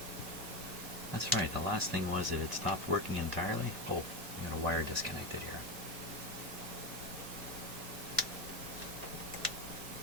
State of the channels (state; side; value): late; left; 1.8 ms